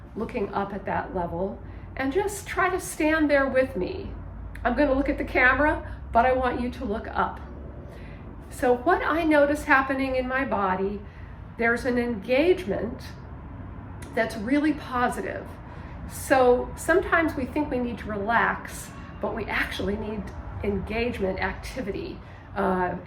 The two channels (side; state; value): both; identical; correlation 1.00